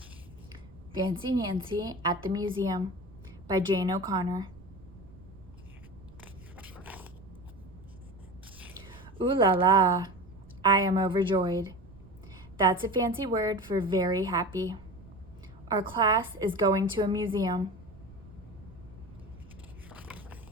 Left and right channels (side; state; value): right; noise; rumble, 21 dB below the sound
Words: Fancy Nancy at the Museum by Jane O'Connor. Ooh la la, I am overjoyed. That's a fancy word for very happy. Our class is going to a museum.